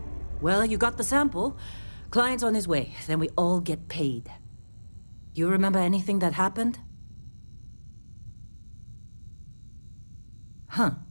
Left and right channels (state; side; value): inverted; both; correlation -1.00